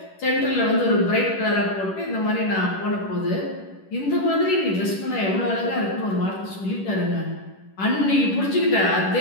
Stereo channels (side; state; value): right; late; 10 ms